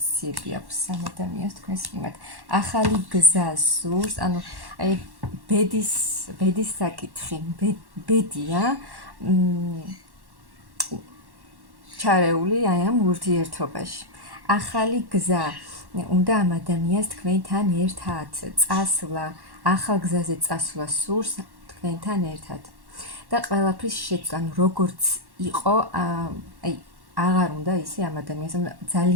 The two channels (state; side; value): late; left; 1.1 ms